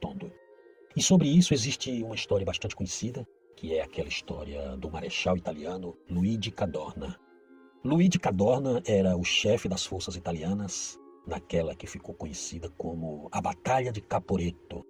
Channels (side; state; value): both; identical; correlation 1.00